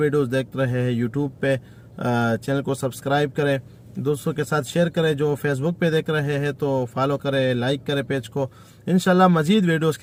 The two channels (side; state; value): both; identical; correlation 1.00